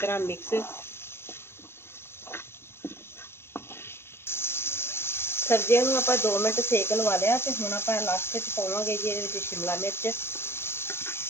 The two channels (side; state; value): right; late; 0.12 ms